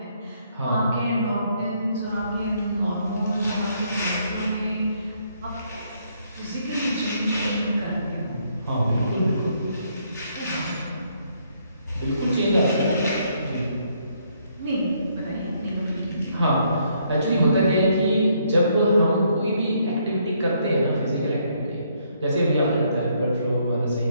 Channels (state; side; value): inverted; both; correlation -0.71